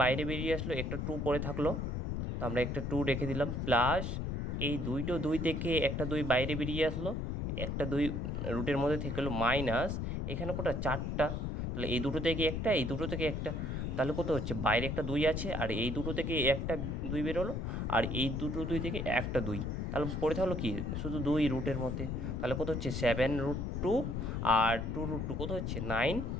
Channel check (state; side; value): noise; left; rumble, 2 dB below the sound